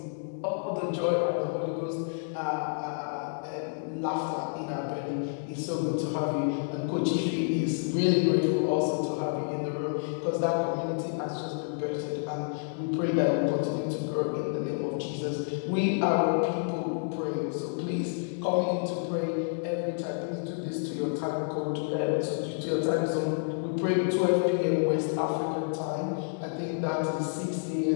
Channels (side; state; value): right; silent; digital silence